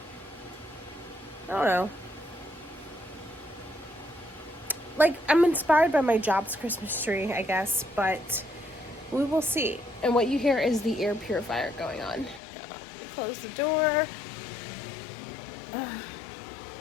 I don't know. Like, I'm inspired by my job's Christmas tree, I guess, but we will see. And what you hear is the air purifier going on. Let me close the door.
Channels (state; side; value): drops out; right; at 12.4 s